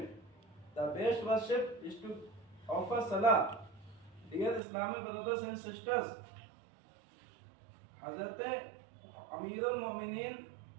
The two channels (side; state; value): left; drops out; at 4.6 s